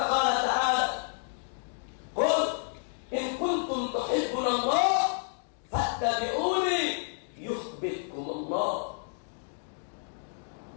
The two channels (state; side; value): silent; right; digital silence